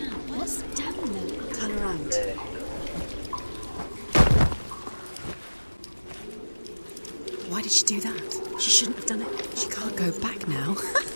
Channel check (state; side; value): inverted; both; correlation -1.00